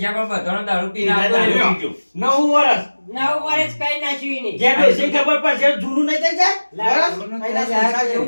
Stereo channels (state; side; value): inverted; both; correlation -1.00